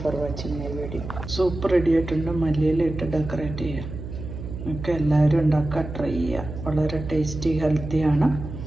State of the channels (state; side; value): noise; right; hum, 9 dB below the sound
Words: for watching my video. Soup ready ആയിട്ടുണ്ട്. മല്ലിയില ഇട്ട് ഡെക്കറേറ്റ് ചെയ്യുക. എല്ലാവരും ഉണ്ടാക്കുക, ട്രൈ ചെയ്യുക. വളരെ ടേസ്റ്റി, ഹെൽത്തിയാണ്.